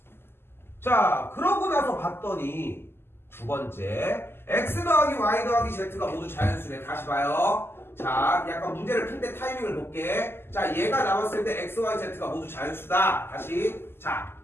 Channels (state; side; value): late; right; 0.11 ms